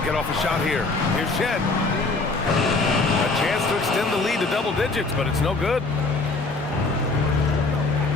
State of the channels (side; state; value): right; quieter; 3.5 dB